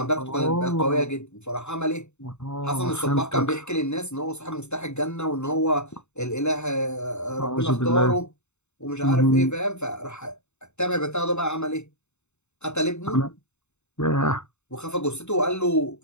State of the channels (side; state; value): right; late; 0.82 ms